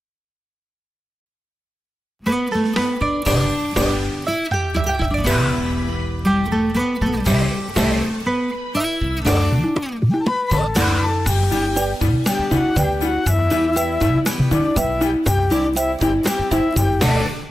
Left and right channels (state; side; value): normal; both; correlation 0.93